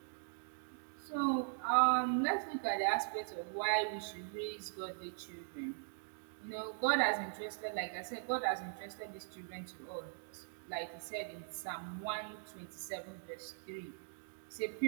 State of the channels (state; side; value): silent; left; digital silence